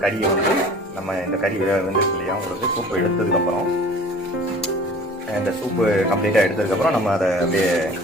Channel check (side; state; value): both; normal; correlation 0.45